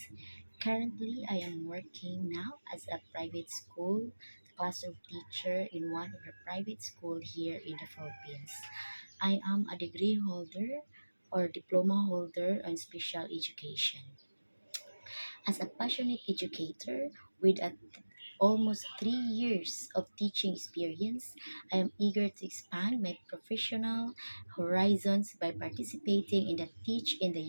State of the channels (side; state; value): both; inverted; correlation -1.00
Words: Currently, I am working now as a private school classroom teacher in one of the private school here in the Philippines. I am a degree holder or diploma holder on special education. As a passionate educator with almost 3 years of teaching experience, I am eager to expand my professional horizons by participating in the Teach in the